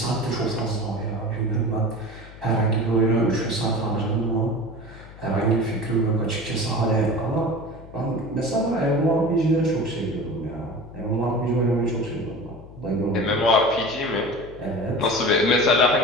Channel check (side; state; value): left; noise; hum, 18 dB below the sound